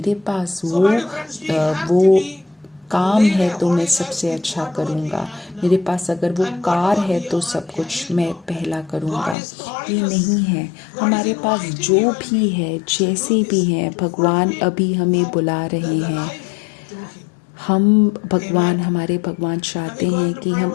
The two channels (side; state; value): right; drops out; at 9.3 s